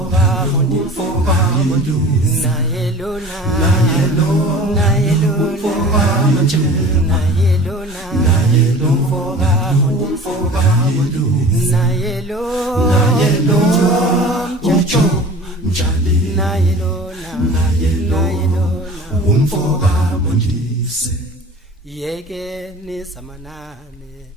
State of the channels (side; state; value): both; normal; correlation 0.41